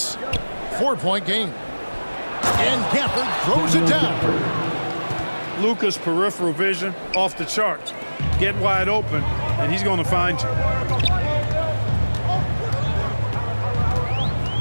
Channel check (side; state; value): both; inverted; correlation -1.00